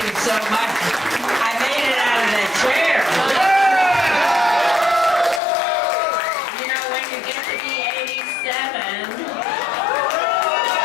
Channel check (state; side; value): drops out; right; at 5.4 s